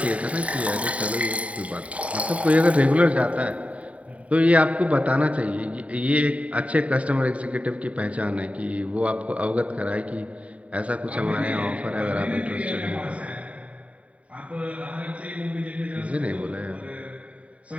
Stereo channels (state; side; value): late; left; 0.066 ms